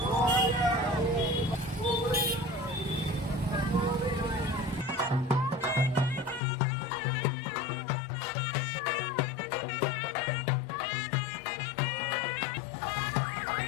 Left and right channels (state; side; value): drops out; right; at 6.4 s